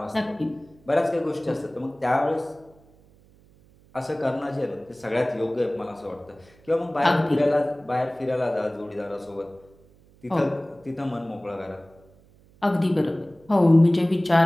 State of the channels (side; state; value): right; noise; hum, 28 dB below the sound